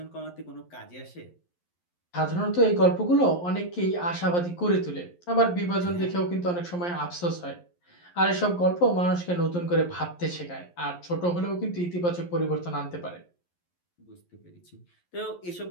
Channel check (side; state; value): right; late; 11 ms